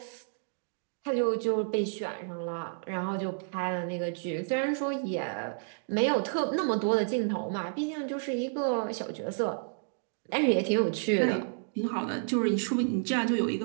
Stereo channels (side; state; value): left; silent; digital silence